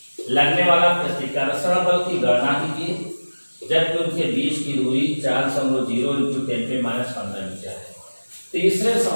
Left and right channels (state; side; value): inverted; both; correlation -1.00